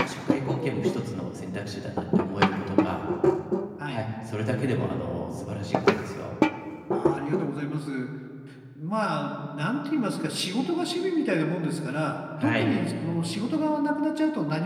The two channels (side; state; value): both; identical; correlation 1.00